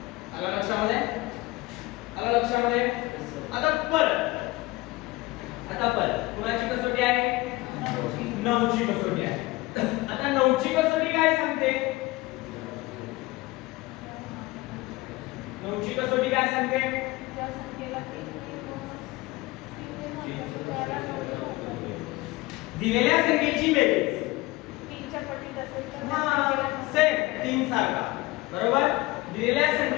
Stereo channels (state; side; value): quieter; right; 20.8 dB